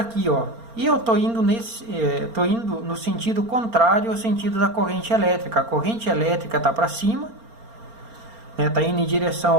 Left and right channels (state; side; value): late; left; 4.3 ms